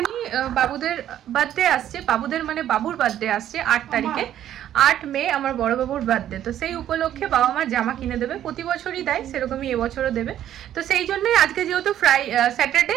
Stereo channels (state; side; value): quieter; left; 11.4 dB